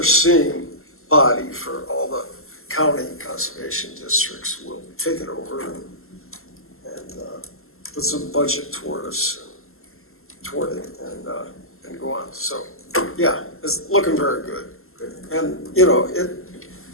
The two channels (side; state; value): right; late; 0.62 ms